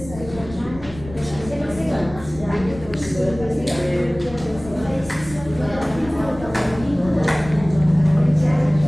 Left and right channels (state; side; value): noise; left; rumble, 15 dB below the sound